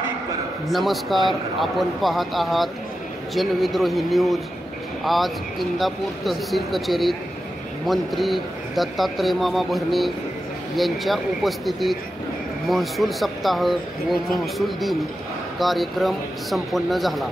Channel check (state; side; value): normal; both; correlation 0.90